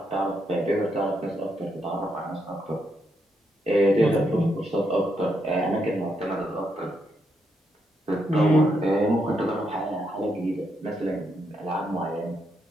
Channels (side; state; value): both; normal; correlation 0.79